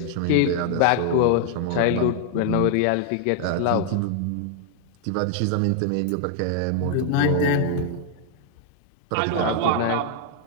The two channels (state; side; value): different; both; correlation -0.01